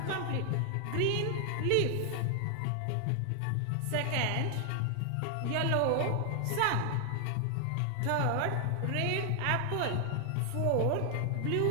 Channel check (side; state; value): both; different; correlation 0.00